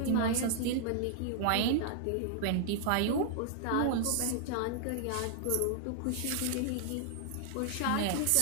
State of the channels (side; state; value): both; different; correlation -0.01